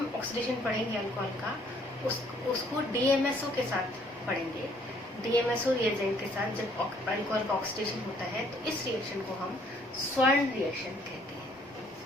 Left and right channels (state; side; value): normal; both; correlation 0.63